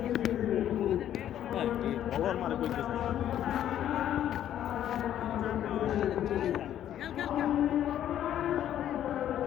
বলার মারে কইতেছে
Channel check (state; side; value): quieter; right; 11.1 dB